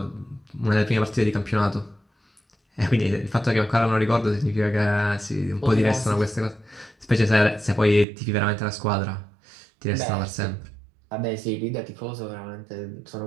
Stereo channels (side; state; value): left; drops out; at 8.1 s